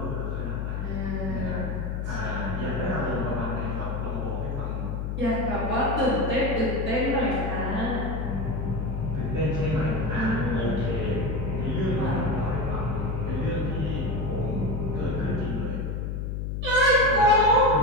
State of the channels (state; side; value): noise; left; hum, 3 dB below the sound